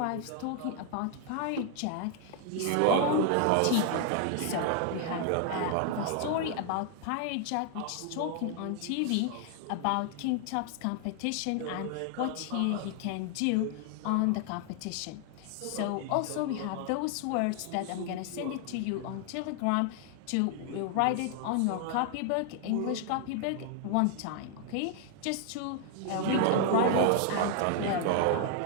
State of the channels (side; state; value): both; different; correlation 0.00